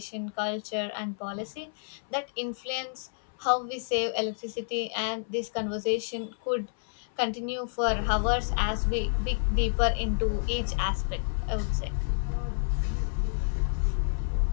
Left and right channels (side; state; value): right; silent; 58 dB below the other